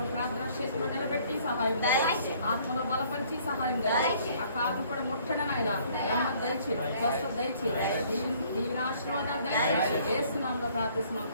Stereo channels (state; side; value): inverted; both; correlation -0.59